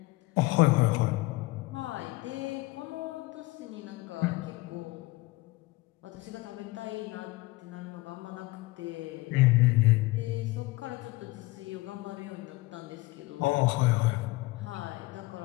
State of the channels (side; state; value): right; quieter; 21.1 dB